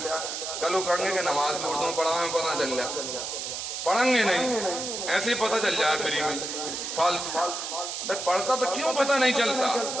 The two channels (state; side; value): noise; right; hiss, 5 dB below the sound